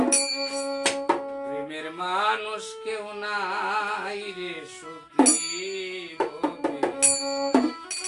প্রেমের মানুষ কেউ নাই রে সখী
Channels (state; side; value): identical; both; correlation 1.00